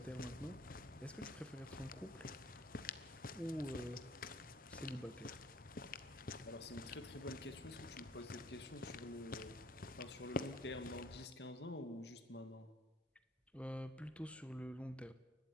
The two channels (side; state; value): both; normal; correlation 0.57